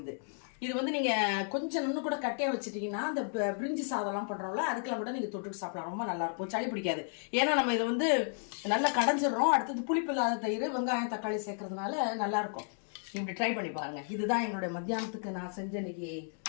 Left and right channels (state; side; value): silent; right; 56 dB below the other